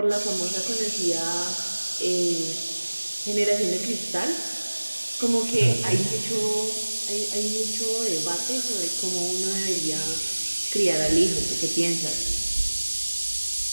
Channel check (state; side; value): inverted; both; correlation -1.00